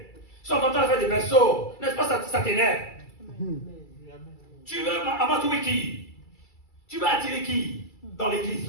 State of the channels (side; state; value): right; late; 2.3 ms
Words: Ils sont en train de faire des berceaux. N'est-ce pas, ça t'énerve? Tu veux amatouer qui? Tu veux attirer qui dans l'église